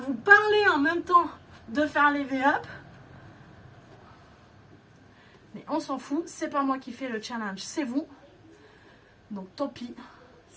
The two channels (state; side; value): identical; both; correlation 1.00